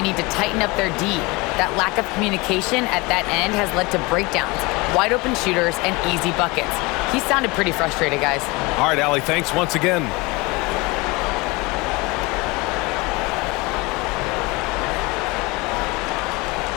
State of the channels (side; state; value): right; quieter; 24.8 dB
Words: need to tighten up their D. That lack of communication at that end has led to breakdowns, wide open shooters, and easy buckets. He sounded pretty frustrated, guys. All right, Allie, thanks once again.